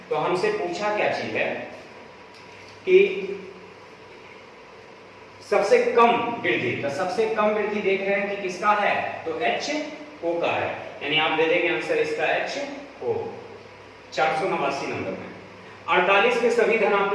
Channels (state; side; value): identical; both; correlation 1.00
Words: तो हमसे पूछा क्या चीज है कि सबसे कम वृद्धि, तो सबसे कम वृद्धि देख रहे हैं कि किसका है, तो एच ओ का है, यानी आप दे देंगे आंसर इसका एच ओ। 489 नंबर में 48 के सभी